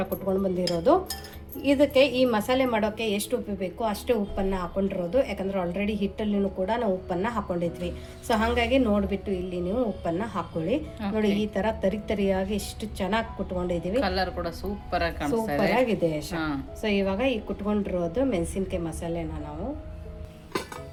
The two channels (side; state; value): both; identical; correlation 1.00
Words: ಕುಟ್ಕೊಂಡು ಬಂದಿರೋದು. ಇದಕ್ಕೆ ಈ ಮಸಾಲೆ ಮಾಡೋಕ್ಕೆ ಎಷ್ಟು ಉಪ್ಪು ಬೇಕು ಅಷ್ಟೇ ಉಪ್ಪನ್ನು ಹಾಕೊಂಡಿರೋದು. ಯಾಕಂದರೆ ಆಲ್ರೆಡಿ ಹಿಟ್ಟಲ್ಲಿನೂ ಕೂಡ ನಾವು ಉಪ್ಪನ್ನು ಹಾಕೊಂಡಿದ್ವಿ. ಸೊ ಹಾಗಾಗಿ ನೋಡಿಬಿಟ್ಟು ಇಲ್ಲಿ ನೀವು ಉಪ್ಪನ್ನು ಹಾಕೊಳ್ಳಿ. ನೋಡಿ ಈ ಥರ ತರಿಯಾಗಿ ಎಷ್ಟು ಚೆನ್ನಾಗಿ ಕುಟ್ಕೊಂಡಿದ್ದೀವಿ. ಕಲರ್ ಕೂಡ ಸೂಪರ್ ಆಗಿದೆ. ಸೊ ಇವಾಗ ಈ ಕುಟ್ಕೊಂಡಿರೋದು ಮೆಣಸಿನ್ಕಾಯಿ ಮಸಾಲೆನ ನಾವು